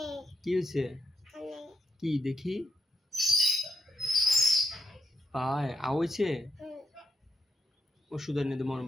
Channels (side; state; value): both; normal; correlation 0.81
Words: কি হয়েছে? কি দেখি পায়ে আওয়াইছে। ওষুধ এনে দেবো না